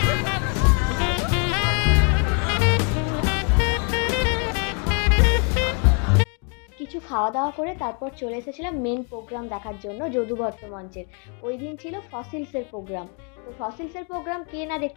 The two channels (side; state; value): right; quieter; 39.0 dB